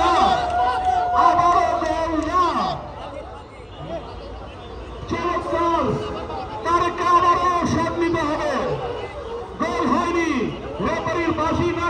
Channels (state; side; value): identical; both; correlation 1.00